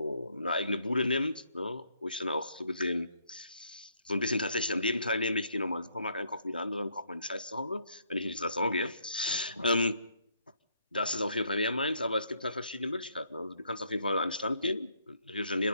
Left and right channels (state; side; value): inverted; both; correlation -0.70